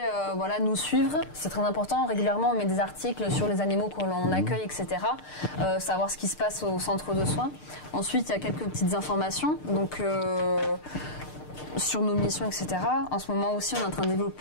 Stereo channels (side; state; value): right; late; 6.6 ms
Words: voilà, nous suivre. C'est très important. Régulièrement, on met des articles sur les animaux que l'on accueille, etc. Savoir ce qui se passe au centre de soins. Ensuite, il y a quelques petites informations. Donc... sur nos missions, etc. En ce moment aussi, on est en train